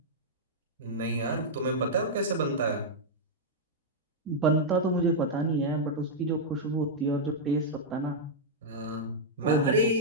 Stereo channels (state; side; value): normal; both; correlation -0.05